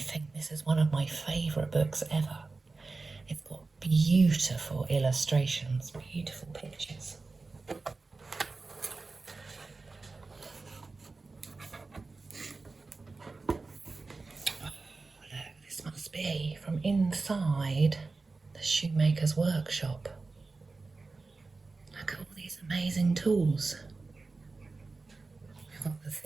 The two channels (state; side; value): quieter; left; 3.8 dB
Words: think this is one of my favourite books ever. It's got beautiful illustrations, beautiful pictures. Oh, look, this must be from inside the shoemaker's workshop. Look at all these amazing tools. We've got the